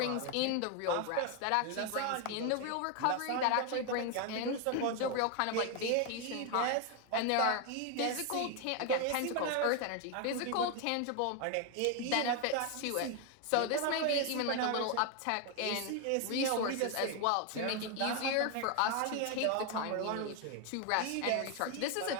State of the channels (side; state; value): both; different; correlation 0.01